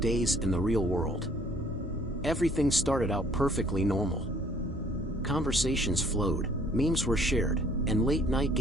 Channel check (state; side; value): normal; both; correlation 0.59